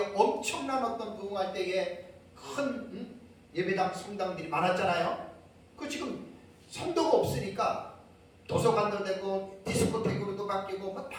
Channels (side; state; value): both; identical; correlation 1.00